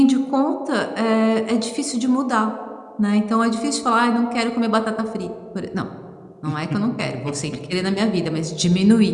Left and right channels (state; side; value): identical; both; correlation 1.00